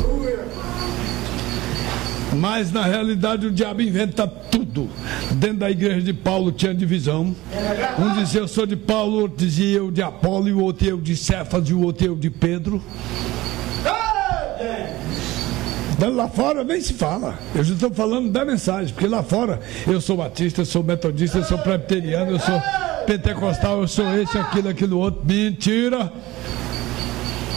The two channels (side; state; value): left; quieter; 18.2 dB